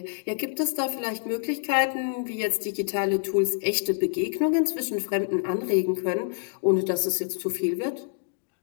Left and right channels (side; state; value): right; silent; digital silence